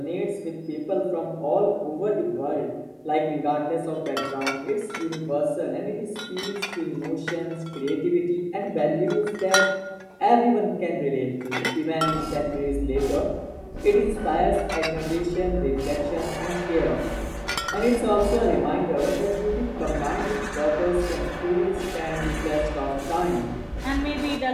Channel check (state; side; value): identical; both; correlation 1.00